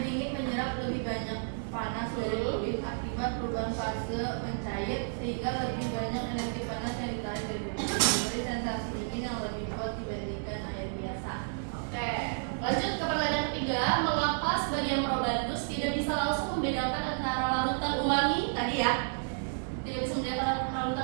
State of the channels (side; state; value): left; silent; digital silence